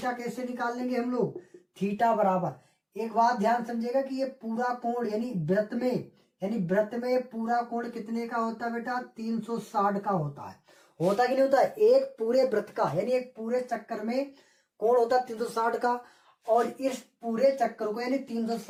कैसे निकाल लेंगे हम लोग, थीटा बराबर, एक बात ध्यान समझिएगा कि ये पूरा कोण यानी वृत्त में पूरा कोण कितने का होता है बेटा, 360 का होता है, होता कि नहीं होता, एक पूरे वृत्त का यानी एक पूरे चक्कर में कोण होता 360 का, और इस पूरे चक्कर को यानी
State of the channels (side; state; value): both; identical; correlation 1.00